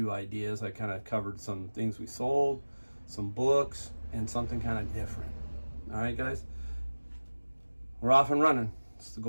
ideas. I kind of covered some things we sold, some books, and something kind of different. All right, guys, we're off and running. It's the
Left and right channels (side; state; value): both; inverted; correlation -1.00